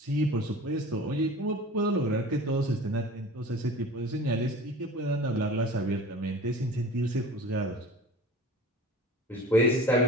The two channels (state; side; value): normal; both; correlation 0.39